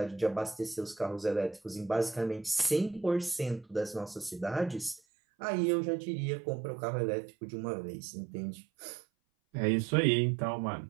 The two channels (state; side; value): drops out; left; at 5.0 s